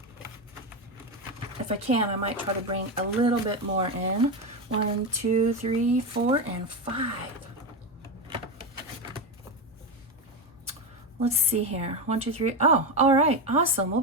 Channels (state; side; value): normal; both; correlation 0.14